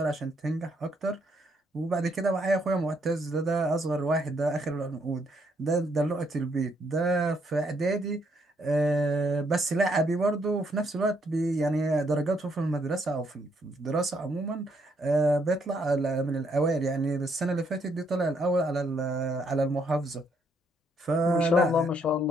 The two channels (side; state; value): both; normal; correlation 0.72